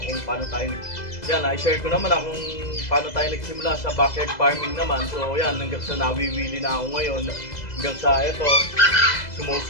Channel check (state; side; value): late; right; 2.0 ms